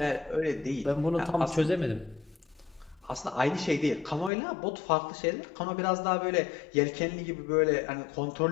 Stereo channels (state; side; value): drops out; right; at 4.3 s